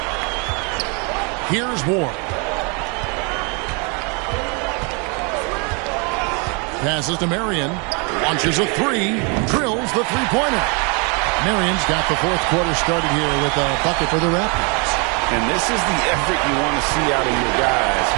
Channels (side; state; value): left; quieter; 33.5 dB